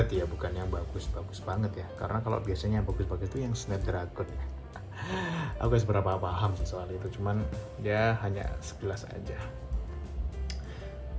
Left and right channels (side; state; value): both; identical; correlation 1.00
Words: ya, bukan yang bagus-bagus banget ya. Karena kalau biasanya yang bagus-bagus itu yang Snapdragon ya. Aku gak seberapa paham sih soal itu, cuman dia hanya sekilas aja.